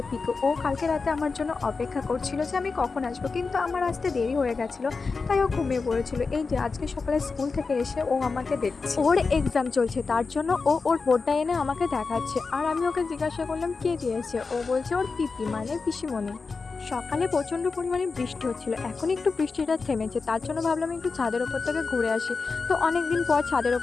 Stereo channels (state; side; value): quieter; right; 4.5 dB